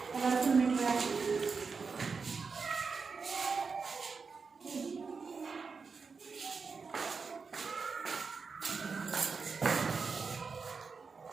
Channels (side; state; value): left; quieter; 5.0 dB